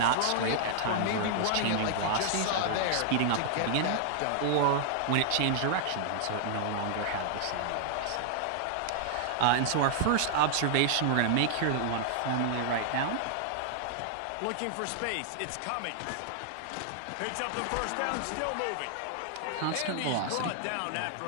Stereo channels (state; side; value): different; both; correlation 0.00